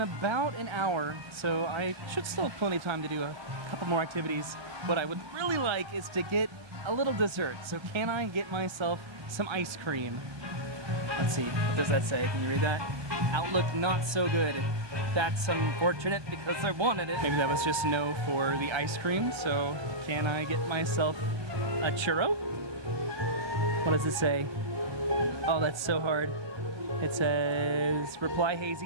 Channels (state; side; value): late; left; 1.3 ms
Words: about an hour, so I should still have plenty of time to do a couple more activities. What I would really like is to get a little dessert. So can I get myself some ice cream? Let's see, what does that say? Can you read that? Outlook not so good. That's unfortunate because I wanted it. Maybe that was just no for the ice cream, so can I get myself a churro? What does it say? Oh, that's so hard. It says, reply